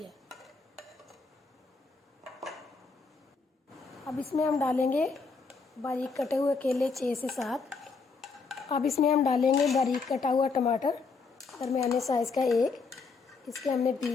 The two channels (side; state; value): right; quieter; 4.5 dB